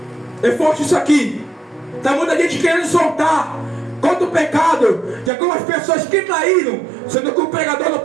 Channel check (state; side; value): drops out; left; at 5.3 s